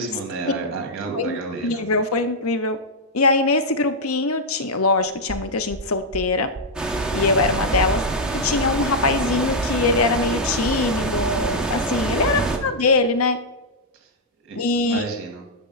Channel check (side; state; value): both; normal; correlation -0.03